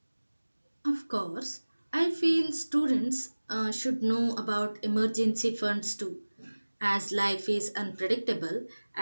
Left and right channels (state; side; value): inverted; both; correlation -1.00